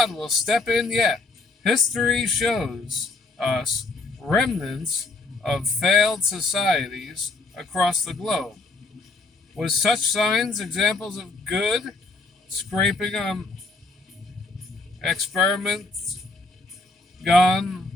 will step in yet. History shows us remnants of failed societies across the globe. With such signs examples of good scraping on experiments gone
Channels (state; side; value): quieter; right; 3.4 dB